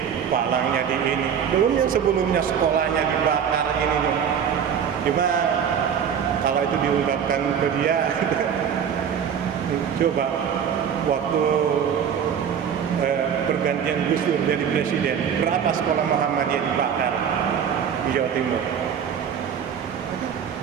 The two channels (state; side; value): quieter; left; 8.0 dB